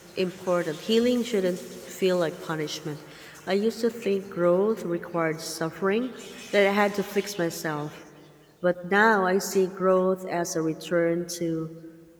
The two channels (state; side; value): identical; both; correlation 1.00